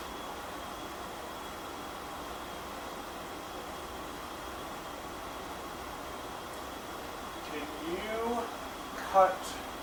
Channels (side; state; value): both; identical; correlation 1.00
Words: Can you cut